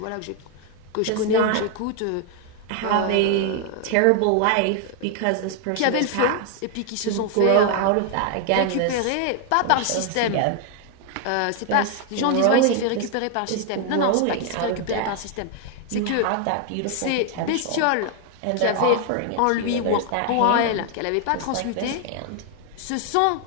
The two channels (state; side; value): different; both; correlation 0.00